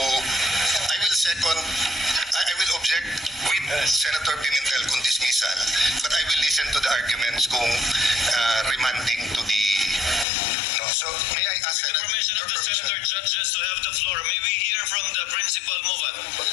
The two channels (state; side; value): drops out; right; at 10.2 s